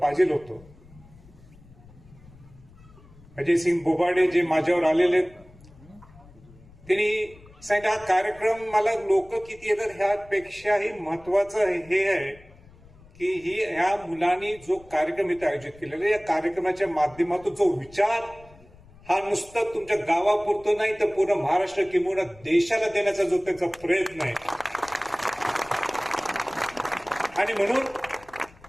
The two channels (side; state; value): left; noise; rumble, 24 dB below the sound